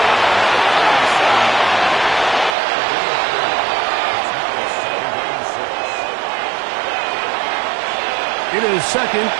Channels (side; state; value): left; drops out; at 2.6 s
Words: It is 2nd